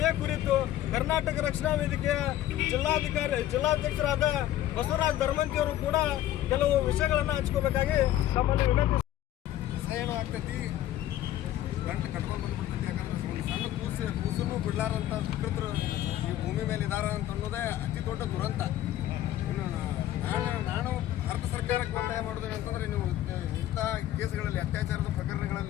ಕುರಿತು ಕರ್ನಾಟಕ ರಕ್ಷಣಾ ವೇದಿಕೆಯ ಜಿಲ್ಲಾಧ್ಯಕ್ಷರಾದ ಬಸವರಾಜ್ ಧರ್ಮಂತಿಯವರು ಕೂಡ ಕೆಲವು ವಿಷಯಗಳನ್ನು ಹಂಚ್ಕೋಬೇಕಾಗಿ ತಮ್ಮಲ್ಲಿ ವಿನಂತಿ. ಏನು ಆಗ್ತೈತಿ ಗಂಟು ಕಟ್ಕೊಂಡು ಬಂದ್ಬಿಡ್ತೈತಿ. ಯಾಕಂದ್ರೆ ಒಂದು ಸಣ್ಣ ಕೂಸನ್ನು ಬಿಡ್ಲಾರಂಥ ವಿಕೃತರು ಈ ಭೂಮಿ ಮೇಲೆ ಇದಾರ ಅಂತ ಅನ್ನೋದೇ ಅತಿ ದೊಡ್ಡ ದುರಂತ. ಇನ್ನು ನಾನು ಭಾರತ ಸರ್ಕಾರಕ್ಕೆ ಒತ್ತಾಯ ಮಾಡೋದೇನು ಅಂತಂದರೆ, ನೀವು ಇಂಥ ಕೇಸ್ಗಳಲ್ಲಿ, ಅತ್ಯಾಚಾರದ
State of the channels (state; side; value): quieter; right; 13.2 dB